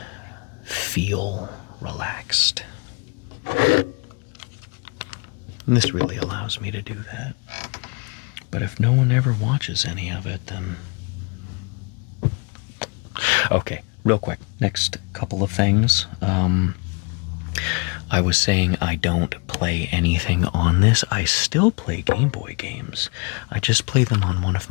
feel relaxed. And this really allows me to do that. But if no one ever watches any of it, then... Okay, real quick. Next couple of things. I was saying I don't play anything on this. I still play Game Boy games. I just play them on one of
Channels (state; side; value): quieter; right; 31.4 dB